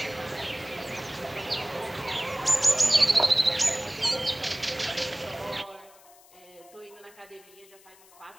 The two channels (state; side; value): noise; left; hiss, 25 dB below the sound